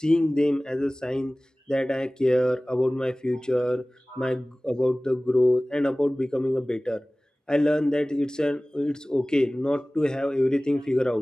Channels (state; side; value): normal; both; correlation 0.98